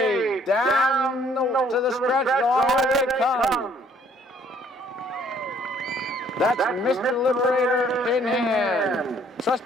down to the stretch, all they come. That's Mr. Liberator in hand.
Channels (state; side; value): normal; both; correlation 0.61